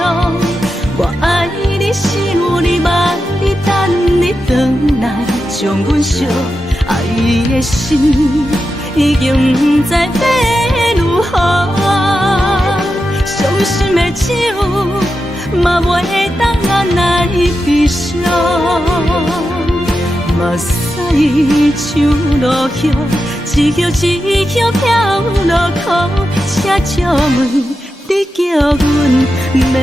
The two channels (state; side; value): normal; both; correlation 0.89